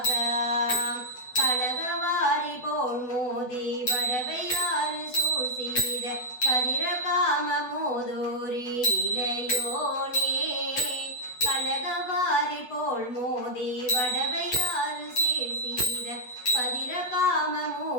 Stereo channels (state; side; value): late; right; 8.1 ms